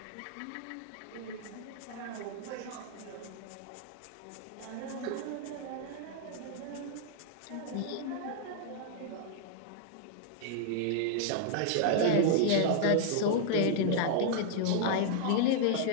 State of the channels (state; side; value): different; both; correlation -0.01